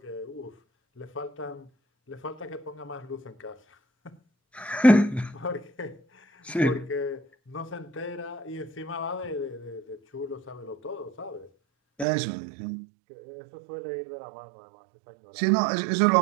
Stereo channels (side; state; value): left; drops out; at 12.1 s